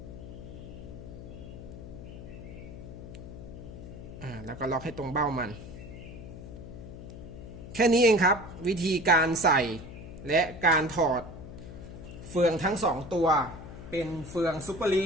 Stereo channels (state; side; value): noise; left; hum, 12 dB below the sound